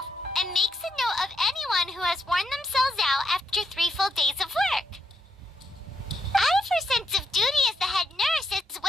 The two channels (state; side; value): normal; both; correlation 0.78